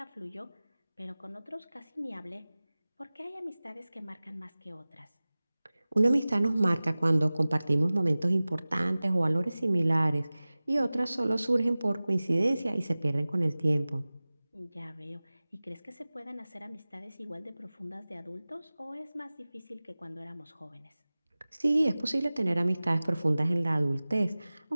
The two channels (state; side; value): inverted; both; correlation -0.98